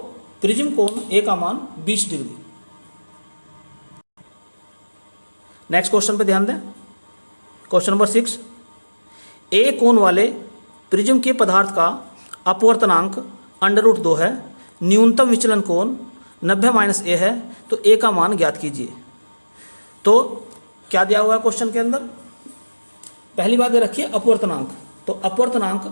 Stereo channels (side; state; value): both; inverted; correlation -1.00